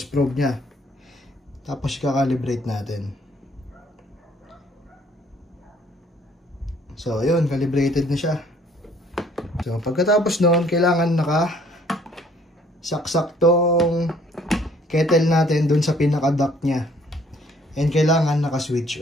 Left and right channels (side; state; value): both; normal; correlation 0.61